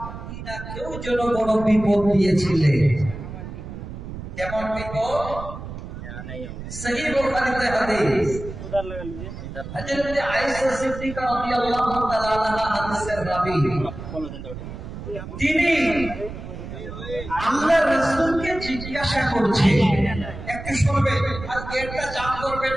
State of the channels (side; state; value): right; noise; rumble, 10 dB below the sound